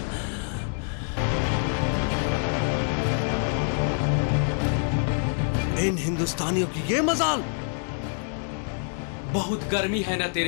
इन हिंदुस्तानियों की ये मजाल। बहुत गर्मी है ना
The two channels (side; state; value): right; silent; 61 dB below the other